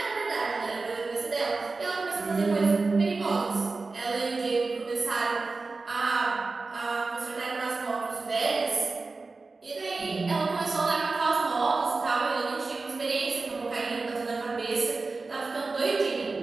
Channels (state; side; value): quieter; left; 3.8 dB